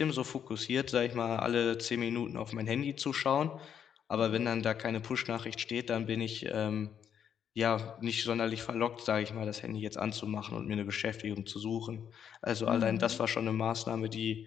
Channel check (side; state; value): right; quieter; 8.5 dB